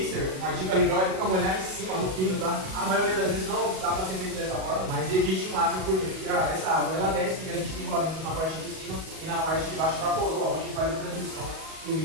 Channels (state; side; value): late; left; 37 ms